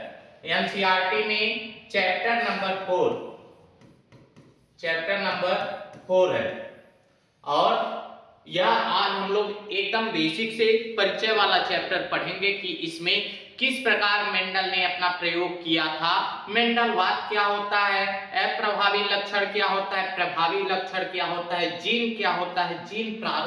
एनसीईआरटी में। चैप्टर नंबर 4 है और यह आज हम लोग एकदम बेसिक से परिचय वाला चैप्टर पढ़ेंगे कि इसमें किस प्रकार मेंडल ने अपना प्रयोग किया था, मेंडलवाद क्या होता है, अप्रभावी लक्षण क्या होता है, प्रभावी लक्षण क्या होता है, जीन क्या होता है, जीन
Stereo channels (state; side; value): identical; both; correlation 1.00